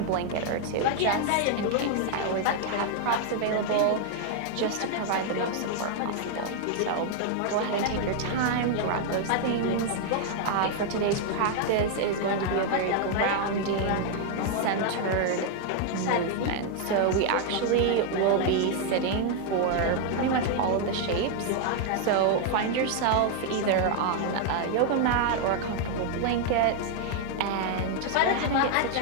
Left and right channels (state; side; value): different; both; correlation 0.00